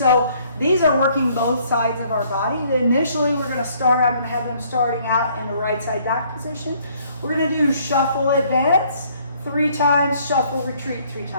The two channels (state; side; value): inverted; both; correlation -0.63